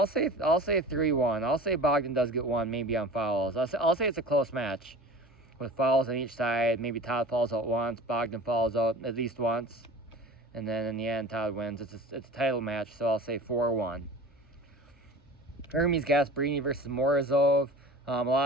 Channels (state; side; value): normal; both; correlation 0.38